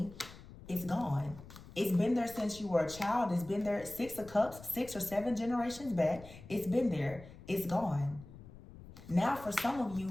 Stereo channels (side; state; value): left; noise; rumble, 17 dB below the sound